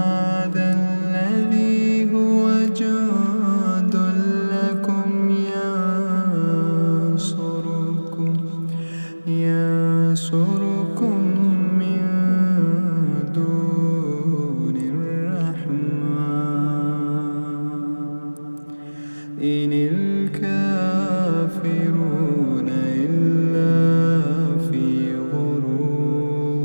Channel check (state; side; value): inverted; both; correlation -1.00